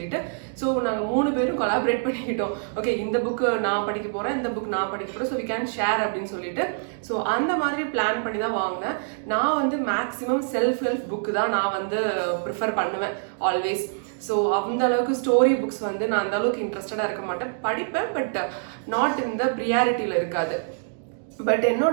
ஸோ நாங்கள் 3 பேரும் கொலாபரேட் பண்ணிக்கிட்டோம். ஓகே, இந்த புக்கு நான் படிக்க போகிறேன், இந்த புக் நான் படிக்க போகிறேன், ஸோ வி கேன் ஷேர் அப்படின்னு சொல்லிட்டு ஸோ அந்த மாதிரி பிளான் பண்ணி தான் வாங்கினேன். நான் வந்து மேக்ஸிமம் செல்ஃப் ஹெல்ப் புக்கு தான் நான் வந்து ப்ரிஃபர் பண்ணுவேன் ஆல்வேஸ். ஸோ அந்த அளவுக்கு ஸ்டோரி புக்ஸ் வந்து நான் அந்த அளவுக்கு இன்ட்ரெஸ்டடாக இருக்க மாட்டேன், படிப்பேன், பட் நாட் இந்த ப்ரியாரிட்டியில் இருக்காது. பட்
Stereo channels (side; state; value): left; silent; digital silence